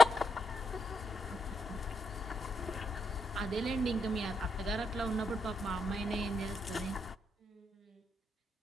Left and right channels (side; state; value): both; normal; correlation 0.78